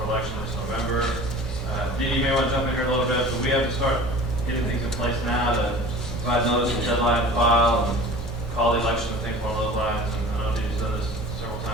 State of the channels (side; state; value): both; normal; correlation 0.41